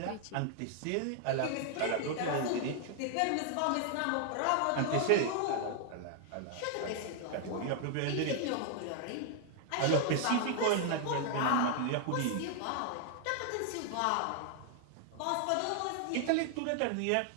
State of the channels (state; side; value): different; both; correlation 0.00